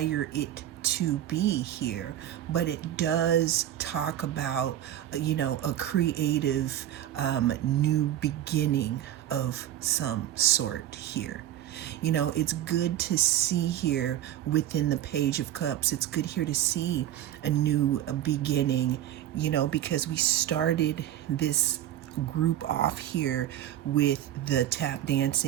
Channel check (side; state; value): left; quieter; 12.0 dB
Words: it to be here, but it does talk about, a creative new beginning of some sort here. It's good to see here within the Page of Cups. It's good here to see a new beginning, because we started this group off here with the tap